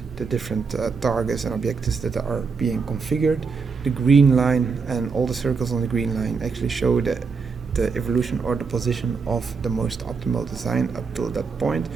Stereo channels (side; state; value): left; quieter; 5.1 dB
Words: the different targets and objectives that are being configured. The green line and all the circles on the green line actually show the evolution or the position of the most optimal design up till that point.